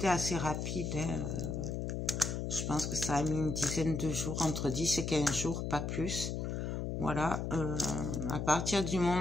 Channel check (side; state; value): left; noise; hum, 2 dB below the sound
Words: assez rapide, hein, je pense que ça a mis une dizaine de jours, entre 10 et 15 jours, pas plus. Voilà, à partir du